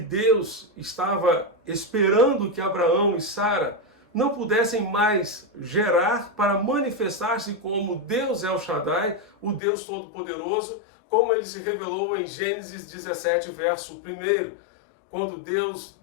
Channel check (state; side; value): drops out; right; at 9.6 s